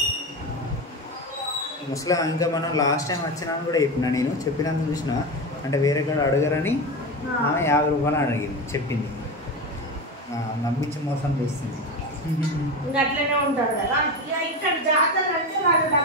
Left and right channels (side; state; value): both; normal; correlation 0.21